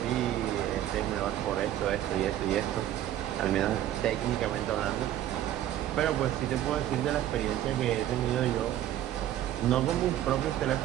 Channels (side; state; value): left; quieter; 12.4 dB